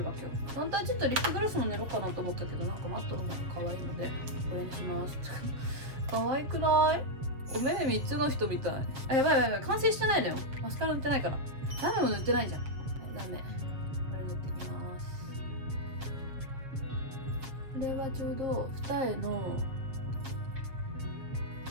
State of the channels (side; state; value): left; late; 7.2 ms